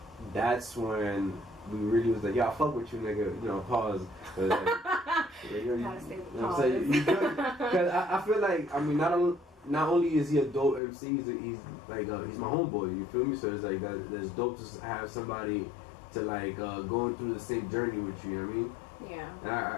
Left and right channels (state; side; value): drops out; right; at 10.8 s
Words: that's when we really was like, yo, I fuck with you, nigga. You know, pause. But, Gotta say the pause. Because I feel like, I mean, not only is he a dope MC, he's like he's my homeboy. You feel me? So it's like that's dope to have somebody to like going through the same journey with you. You know what I mean?